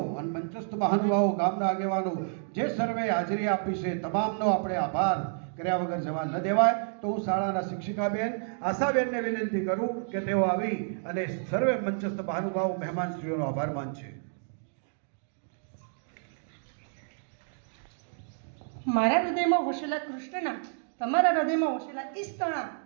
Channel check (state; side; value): silent; left; digital silence